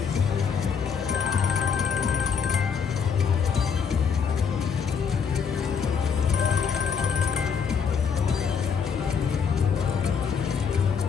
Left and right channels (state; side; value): quieter; right; 6.4 dB